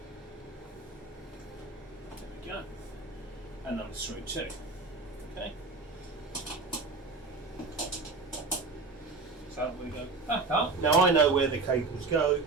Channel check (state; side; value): quieter; left; 3.9 dB